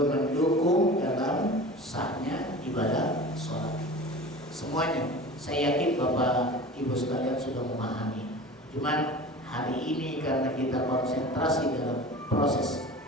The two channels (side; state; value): both; normal; correlation 0.36